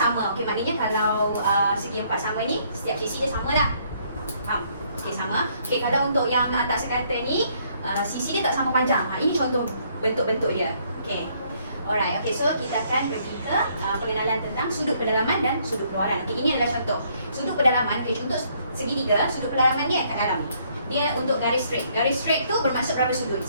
Okey, maknanya kalau segi empat sama ni, setiap sisi dia sama tak? Faham? Okey, sama. Okey, kalau untuk yang antar sekata ni, sisi dia tak sama panjang. Ini contoh bentuk-bentuk dia. Okey. Alright. Okey, so kita akan pergi ke pengenalan tentang sudut pendalaman dan sudut keluaran. Okey, ini adalah contoh. Sudut pendalaman, okey, untuk segitiga, sudut pendalaman dia kat dalam. Dia untuk garis straight. Garis straight tu bermaksud berapa sudut?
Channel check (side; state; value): both; inverted; correlation -0.67